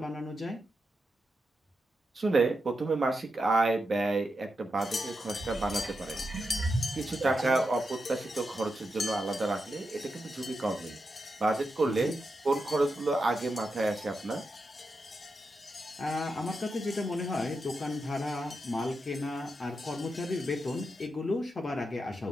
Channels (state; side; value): normal; both; correlation 0.87